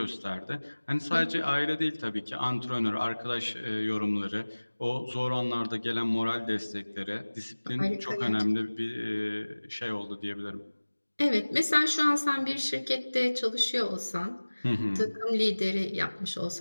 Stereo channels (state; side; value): inverted; both; correlation -1.00